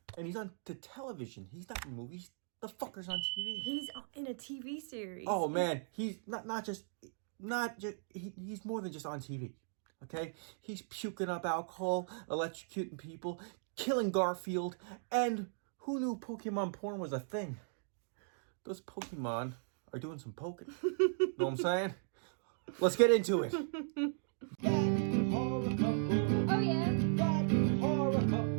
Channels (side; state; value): left; silent; digital silence